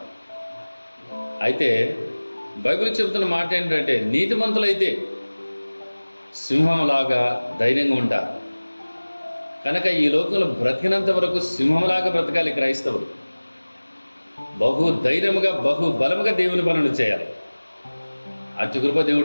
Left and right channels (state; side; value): inverted; both; correlation -1.00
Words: అయితే బైబిల్ చెబుతున్న మాట ఏంటంటే, నీతిమంతులైతే సింహంలాగా ధైర్యంగా ఉంటారు. కనుక ఈ లోకంలో బ్రతికినంత వరకు సింహంలాగా బ్రతకాలి క్రైస్తవులు. బహు ధైర్యముగా బహు బలముగా దేవుని పనులు చేయాలి. అతి కృప